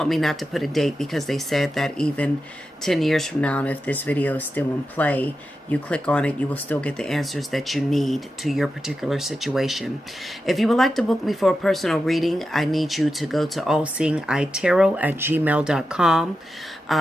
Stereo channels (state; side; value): normal; both; correlation 0.90